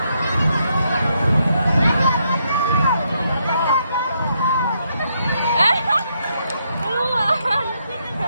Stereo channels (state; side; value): inverted; both; correlation -0.77